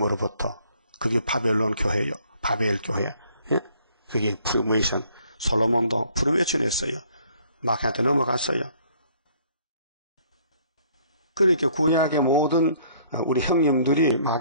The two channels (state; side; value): inverted; both; correlation -0.61